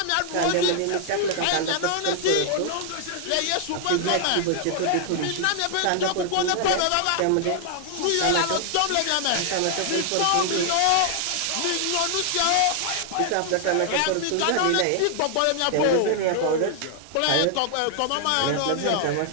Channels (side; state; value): both; different; correlation 0.00